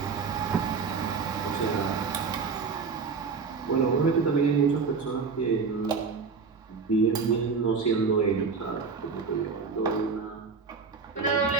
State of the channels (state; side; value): quieter; left; 5.1 dB